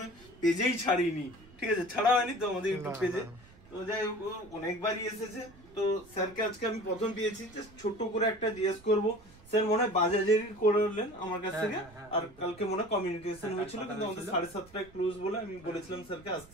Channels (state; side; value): noise; right; rumble, 23 dB below the sound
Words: হয় পেজেই ছাড়িনি, ঠিক আছে, ছাড়া হয়নি তো আমাদের ইউটিউব পেজে। তো যাই হোক, অনেকবারই এসেছে। তো স্যারকে আজকে আমি প্রথম পেয়েছি, জাস্ট ছোট্ট করে একটা জিজ্ঞেস করবো। স্যার মনে হয় বাজাজেরই করলেন আমার কাছ থেকে, আর কালকে মনে হয় কমিউনিকেশন হয়েছিল, কিন্তু আমাদের 7:30টায় ক্লোজ বলে আমি বলেছিলাম স্যারকে